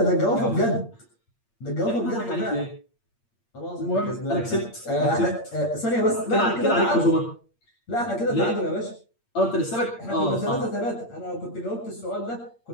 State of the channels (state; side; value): late; right; 8.6 ms